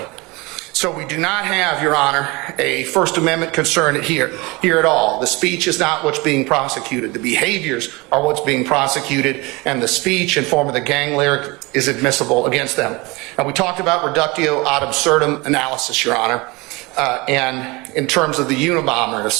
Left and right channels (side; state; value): left; quieter; 24.7 dB